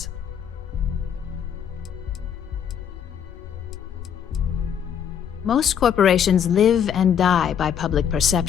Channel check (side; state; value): right; quieter; 8.4 dB